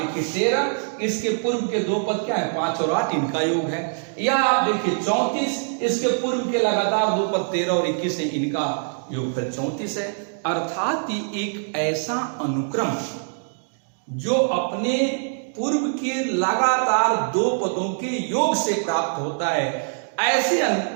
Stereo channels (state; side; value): silent; left; digital silence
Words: 13, इसके पूर्व के 2 पद क्या है, 5 और 8, इनका योग है। या आप देखिए 34, इसके पूर्व के लगातार 2 पद 13 और 21 है, इनका योगफल 34 है। अर्थात एक ऐसा अनुक्रम जो अपने पूर्व के लगातार दो पदों के योग से प्राप्त होता है। ऐसे